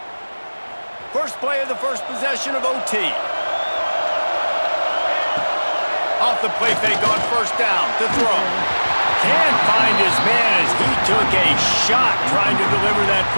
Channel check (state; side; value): inverted; both; correlation -1.00